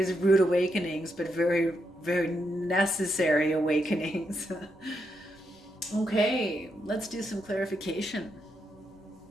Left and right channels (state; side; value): normal; both; correlation 0.81